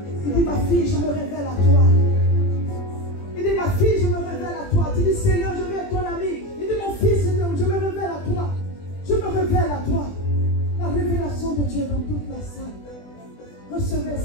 Il dit ma fille, je me révèle à toi. Il dit ma fille, je me révèle à toi. Tu dis Seigneur, je veux être ton ami. Il dit mon fils, je me révèle à toi. Je me révèle à toi. La révélation de Dieu dans toute la salle. Recevez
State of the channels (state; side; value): late; right; 20 ms